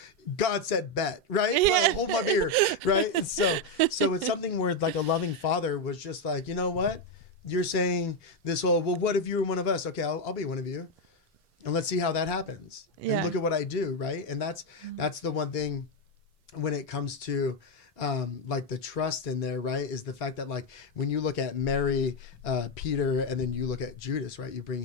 God said bet, right? Yeah. Like, hold my beer, right? And so it's something where like a loving father was just like, you know what? You're saying this whole, well, what if you were one of us? Okay, I'll be one of you. And let's see how that happens. Yeah. And look at what I do, right? And that's the one thing when it comes to like the trust in there, right, is the fact that like when you look at Mary, Peter, and then you look at Judas, right, you bring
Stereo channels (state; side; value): normal; both; correlation 0.05